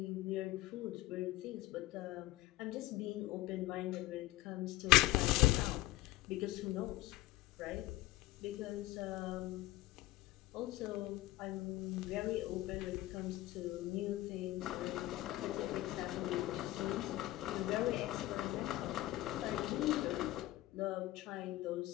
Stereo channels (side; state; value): right; quieter; 17.4 dB